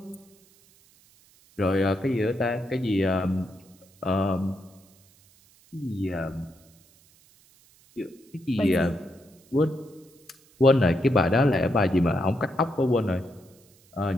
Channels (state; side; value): noise; right; hiss, 30 dB below the sound